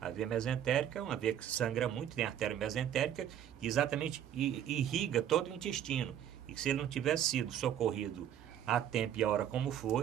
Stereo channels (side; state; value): left; quieter; 10.1 dB